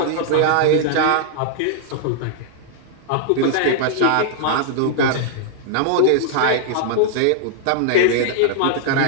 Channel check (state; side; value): different; both; correlation -0.01